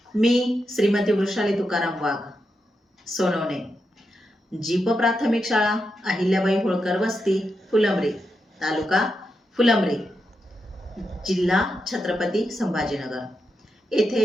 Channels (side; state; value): both; normal; correlation 0.86